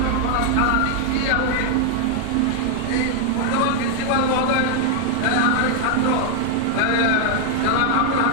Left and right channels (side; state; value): both; different; correlation 0.00